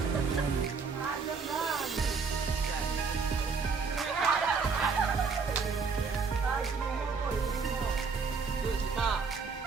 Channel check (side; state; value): left; quieter; 5.1 dB